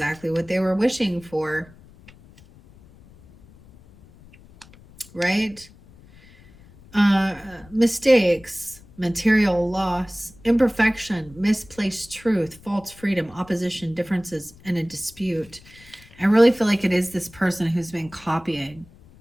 what they were wishing for. Right? Mistakes, material loss, imperfection, misplaced truth, false freedom, opposition, differences, and a dispute. I really feel like it is this person who's been copying,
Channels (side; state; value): left; noise; rumble, 24 dB below the sound